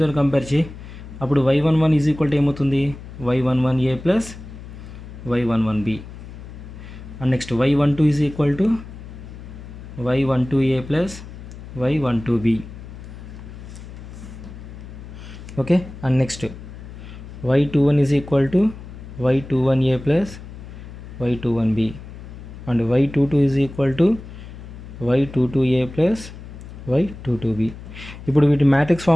compare చేయి. అప్పుడు Y11 is equal to ఏమవుతుంది, Y11A plus Y11B. And next Y12 is equal to Y12A plus Y12B. Okay, and next Y21 is equal to Y21A plus Y21B. And Y22 is equal to Y22A plus Y22B. ఇప్పుడు వీటి matrix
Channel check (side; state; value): left; noise; hum, 14 dB below the sound